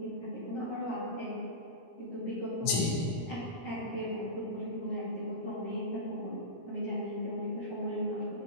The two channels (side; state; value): right; late; 17 ms